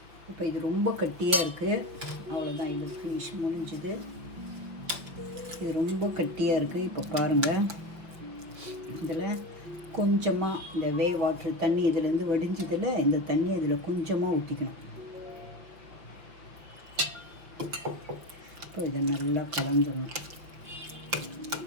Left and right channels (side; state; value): left; late; 5.7 ms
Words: இப்போ இது ரொம்ப கட்டியாக இருக்குது. அவ்வளோதான், இது ஃபினிஷ் முடிஞ்சுது. இது ரொம்ப கட்டியாக இருக்குது. இப்போ பாருங்கள், இதில் கொஞ்சமாக இந்த வேவ் வாட்ரு தண்ணி இதிலேருந்து வடிஞ்சதில் இந்த தண்ணி இதில் கொஞ்சமாக ஊற்றிக்கணும். இப்போ இதை நல்லா கலந்துடணும்.